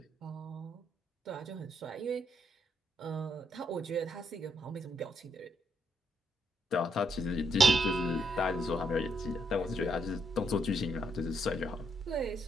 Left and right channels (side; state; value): both; normal; correlation 0.75